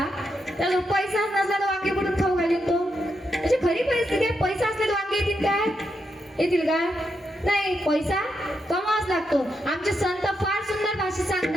त्याला पैसा नसला तर वांगे कुठून खाऊ घालीन तो? म्हणजे खरी परिस्थिती आहे. पैसा असला तर वांगे येतील काय? येतील का? नाही, पैसा कमावाच लागतो. आमचे संत फार सुंदर भाषेत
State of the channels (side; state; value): both; normal; correlation 0.83